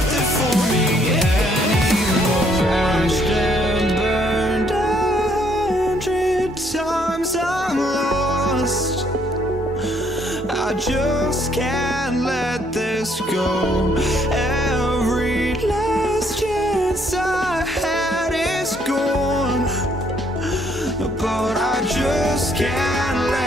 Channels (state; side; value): normal; both; correlation 0.68